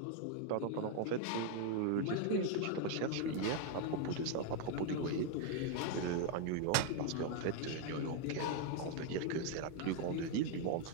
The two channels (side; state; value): both; different; correlation 0.01